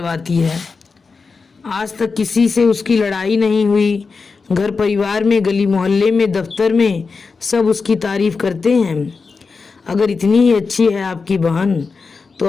है? आज तक किसी से उसकी लड़ाई नहीं हुई। घर परिवार में, गली मोहल्ले में, दफ्तर में सब उसकी तारीफ करते हैं। अगर इतनी ही अच्छी है आपकी बहन तो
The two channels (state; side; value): quieter; right; 4.7 dB